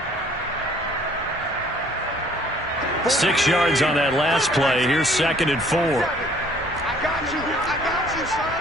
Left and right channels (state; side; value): normal; both; correlation 0.57